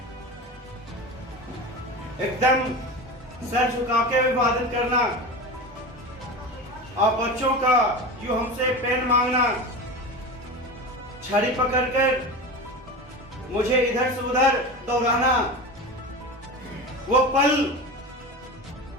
एकदम सर झुका के अभिवादन करना। आप बच्चों का जो हमसे पेन मांगना, छड़ी पकड़कर मुझे इधर से उधर दौड़ाना, वो पल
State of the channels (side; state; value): both; normal; correlation 0.28